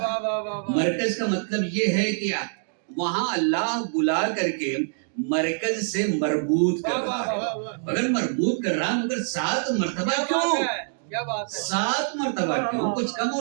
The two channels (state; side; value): silent; left; digital silence